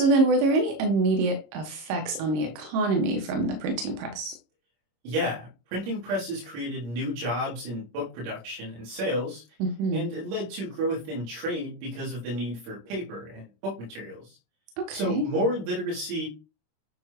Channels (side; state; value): left; late; 25 ms